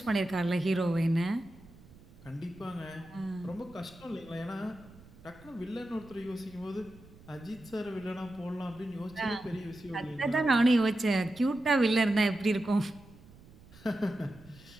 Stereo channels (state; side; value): noise; right; rumble, 22 dB below the sound